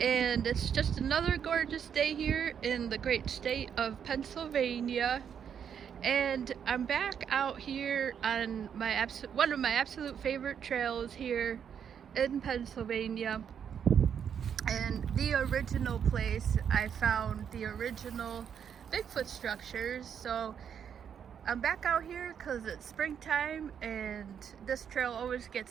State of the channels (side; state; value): left; quieter; 8.0 dB